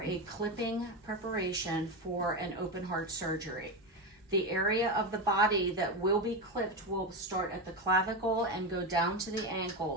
a clipping preparation for an open heart surgery. The area of the body that will be clipped will start at the clavicle and go down to the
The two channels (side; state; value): both; normal; correlation 0.15